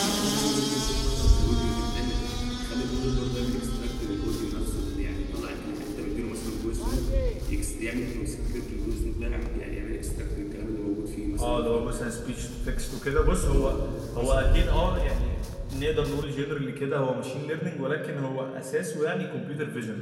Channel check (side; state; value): both; identical; correlation 1.00